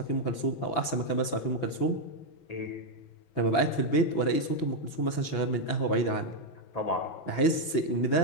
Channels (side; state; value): right; late; 6.0 ms